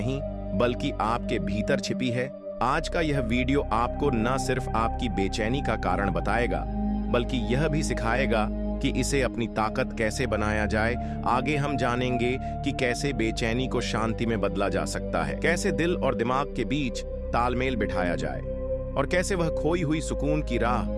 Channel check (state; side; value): identical; both; correlation 1.00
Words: बल्कि आपके भीतर छिपी है? आज का यह वीडियो आपको न सिर्फ आपकी बेचैनी का कारण बताएगा, बल्कि यह भी सिखाएगा कि इसे अपनी ताकत कैसे बनाया जाए। आगे हम जानेंगे कि कैसे बेचैनी को शांति में बदला जा सकता है, कैसे दिल और दिमाग के बीच तालमेल बिठाया जाए, और कैसे वह खोई हुई सुकून की राह